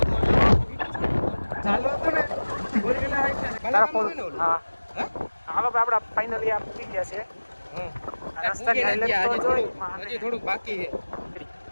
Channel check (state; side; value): inverted; both; correlation -1.00